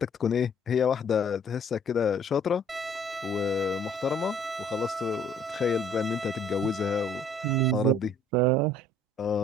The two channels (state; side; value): normal; both; correlation 0.58